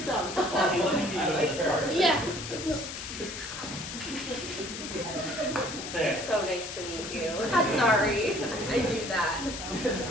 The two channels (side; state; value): left; noise; hiss, 8 dB below the sound